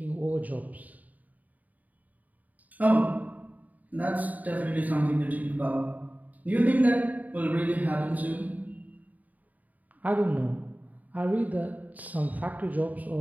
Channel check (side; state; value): left; late; 0.076 ms